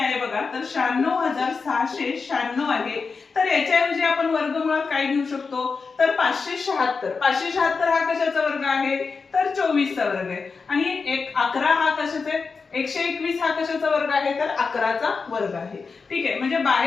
बघा, तर 96696 आहे. तर याच्याऐवजी आपण वर्गमुळात काय घेऊ शकतो, तर 576. 576 हा कशाचा वर्ग आहे, तर 24चा वर्ग आहे. आणि 11 हा कशाचा आहे, 121 हा कशाचा वर्ग आहे, तर 11चा वर्ग आहे. ठीक आहे, म्हणजे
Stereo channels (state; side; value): quieter; right; 4.8 dB